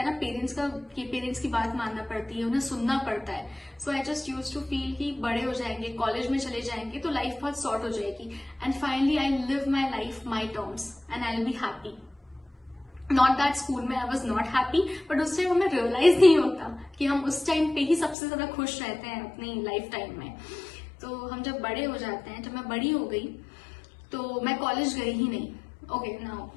ना पेरेंट्स की बात मानना पड़ती है, उन्हें सुनना पड़ता है। So I just use to feel कि बड़े हो जाएंगे, कॉलेज में चले जाएंगे तो लाइफ बहुत सॉर्ट हो जाएगी and finally I live my life my terms and I will be happy. Not that school में I was not happy, but उस टाइम हमें रियलाइज नहीं होता कि हम उस टाइम पे ही सबसे ज्यादा खुश रहते हैं अपनी लाइफ टाइम में। तो हम जब बड़े हो जाते हैं, जब मैं बड़ी हो गई तो मैं कॉलेज गई ही नहीं। Okay, now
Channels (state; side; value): drops out; right; at 18.2 s